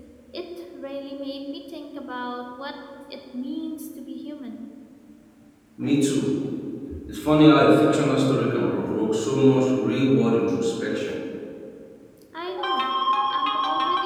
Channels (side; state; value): both; identical; correlation 1.00